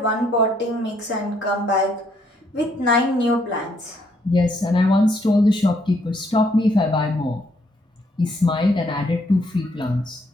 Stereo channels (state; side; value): normal; both; correlation 0.70